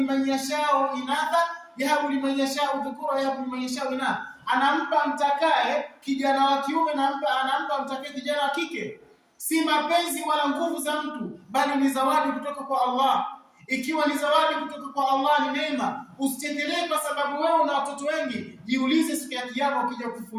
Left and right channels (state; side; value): identical; both; correlation 1.00